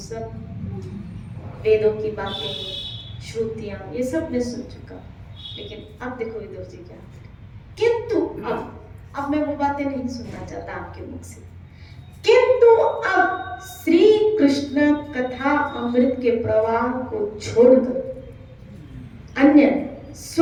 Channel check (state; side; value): identical; both; correlation 1.00